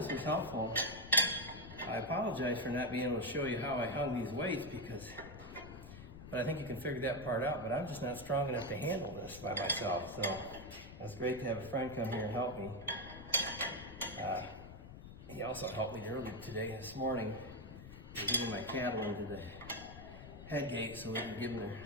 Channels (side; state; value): left; noise; rumble, 14 dB below the sound